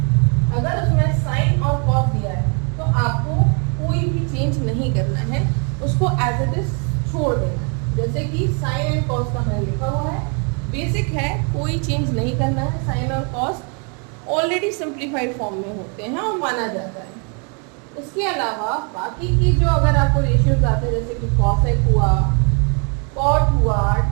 अगर उसमें साइन और कॉस दिया है तो आपको कोई भी चेंज नहीं करना है, उसको एज इट इज छोड़ देना है। जैसे कि साइन एंड कॉस का मैंने लिखा हुआ है, बेसिक है, कोई चेंज नहीं करना है। साइन और कॉस ऑलरेडी सिंप्लीफाइड फॉर्म में होते हैं और माना जाता है। इसके अलावा बाकी की जो अगर आपको रेशियोज आते हैं, जैसे कि कॉसेक हुआ, कॉट हुआ,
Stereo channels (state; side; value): quieter; left; 37.5 dB